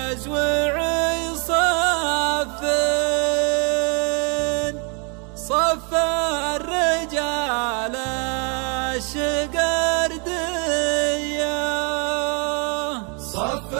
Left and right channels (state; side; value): quieter; left; 35.5 dB